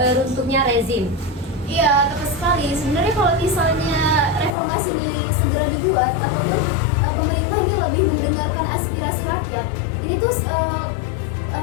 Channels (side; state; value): right; drops out; at 4.5 s